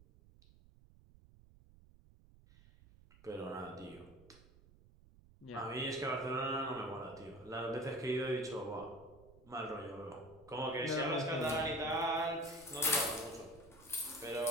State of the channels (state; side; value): noise; right; rumble, 24 dB below the sound